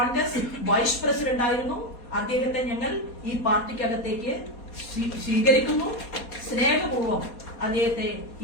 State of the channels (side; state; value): right; late; 4.2 ms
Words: വൈസ് പ്രസിഡന്റ് ആയിരുന്നു. അദ്ദേഹത്തെ ഞങ്ങൾ ഈ പാർട്ടിക്കകത്തേക്ക് സ്വീകരിക്കുന്നു. സ്നേഹപൂർവ്വം അദ്ദേഹത്തെ